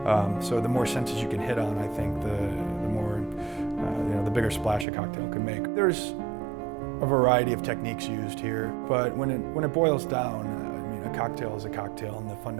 so the more senses you can hit on, I think the more the bigger splash a cocktail can make. There's a variety of techniques used here, but when it boils down, I mean, a cocktail is a cocktail, and the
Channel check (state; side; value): drops out; left; at 4.9 s